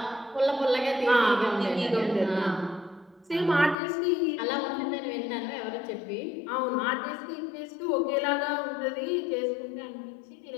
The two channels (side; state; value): right; drops out; at 3.8 s